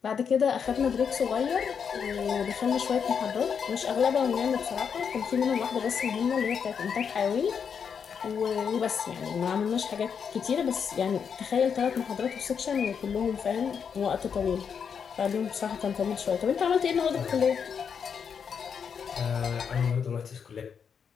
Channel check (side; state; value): right; quieter; 6.9 dB